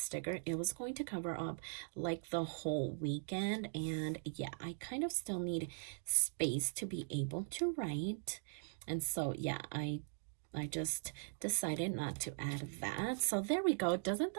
it was going to cover up like the whole weekend, and yeah, I kind of still need space to be able to write. And so yeah, I just decided not to add that. So there we go. Doesn't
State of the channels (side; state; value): left; silent; digital silence